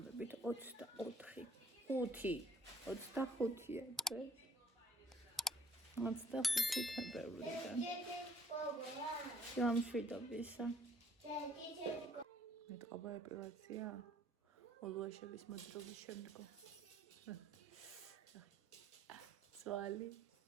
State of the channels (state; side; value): normal; both; correlation 0.62